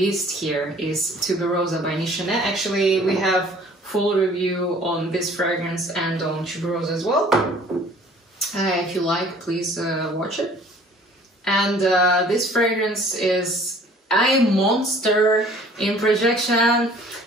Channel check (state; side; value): normal; both; correlation 0.52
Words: here is Tuberosa by Nichonet. Actually, we have full review on this fragrance and on Tuberosa as well. If you like, please watch it. And this fragrance is a monster in projection.